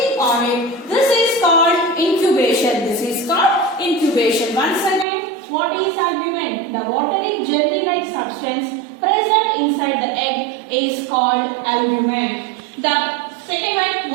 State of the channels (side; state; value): left; drops out; at 5.1 s